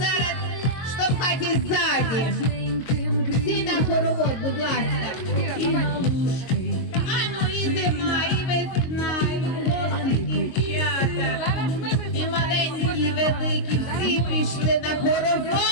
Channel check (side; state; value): right; late; 22 ms